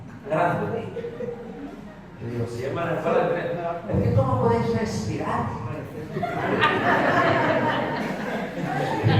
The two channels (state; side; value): identical; both; correlation 1.00